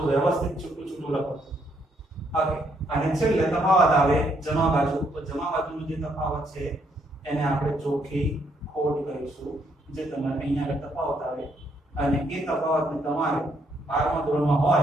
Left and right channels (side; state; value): both; normal; correlation 0.72